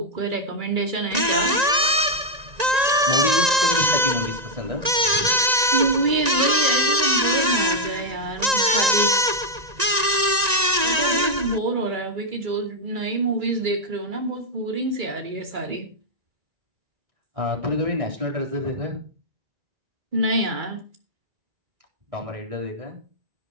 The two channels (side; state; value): left; late; 1.9 ms